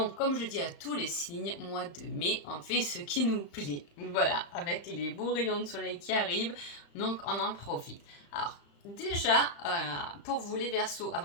comme je dis à tous les signes, mois de mai, on fait ce qui nous plaît. Voilà, avec les beaux rayons de soleil qui arrivent, donc on en profite. Alors déjà, pour vous les Verseaux,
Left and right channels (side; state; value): right; late; 35 ms